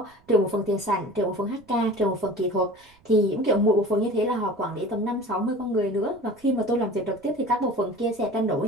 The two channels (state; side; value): noise; right; rumble, 30 dB below the sound